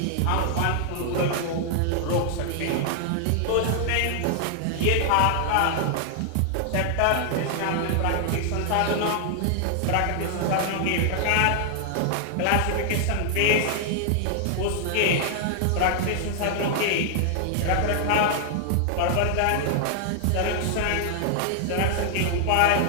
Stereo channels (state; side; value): different; both; correlation 0.00